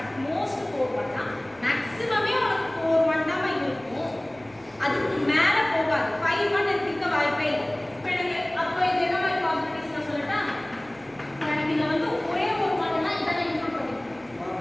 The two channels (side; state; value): left; noise; hum, 30 dB below the sound